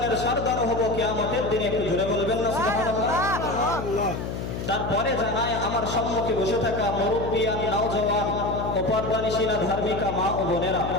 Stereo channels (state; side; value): noise; left; hum, 5 dB below the sound